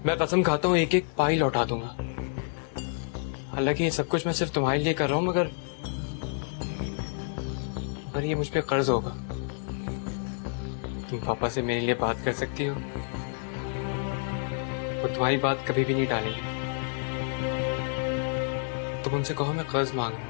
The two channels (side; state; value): right; silent; 59 dB below the other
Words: मैं कसम खाता हूँ एक एक पाई लौटा दूंगा। हालांकि ये सब कुछ मैं सिर्फ तुम्हारे लिए कर रहा हूँ, मगर ये मुझ पे कर्ज होगा। तुम पापा से मेरे लिए बात कर सकती हो, वो तुम्हारी बात कभी भी नहीं टालेंगे। तुम उनसे कहो मैं कर्ज मांग रहा